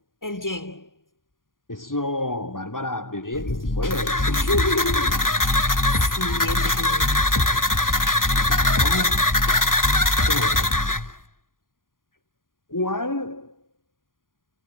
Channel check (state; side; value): late; right; 0.90 ms